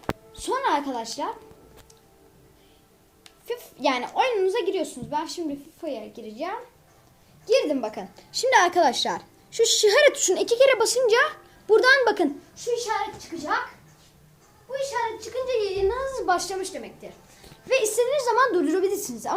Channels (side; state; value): both; identical; correlation 1.00